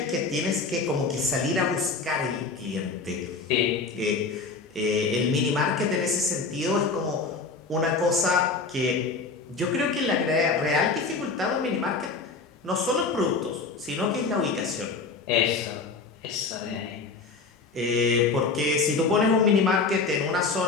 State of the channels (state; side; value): quieter; right; 4.3 dB